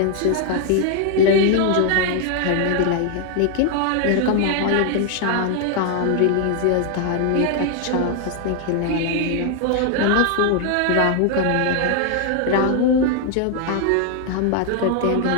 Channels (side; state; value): both; different; correlation 0.00